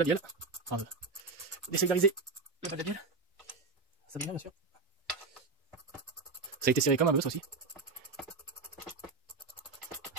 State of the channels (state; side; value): quieter; left; 4.0 dB